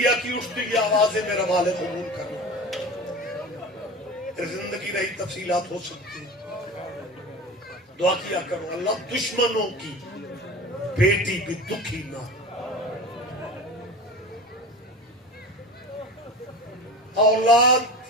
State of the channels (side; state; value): both; normal; correlation 0.32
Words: کی اٹھتی یہ آوازیں میرا مال قبول کرنا، پھر زندگی رہی تفصیلات ہو سکتی ہیں۔ دعا کیا کرو اللہ دشمنوں کی بیٹی بھی دکھی نہ، اولاد